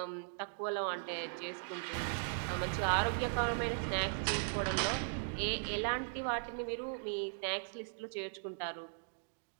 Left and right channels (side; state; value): left; silent; digital silence